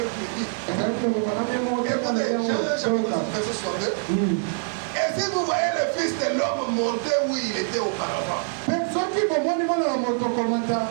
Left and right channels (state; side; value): silent; left; 62 dB below the other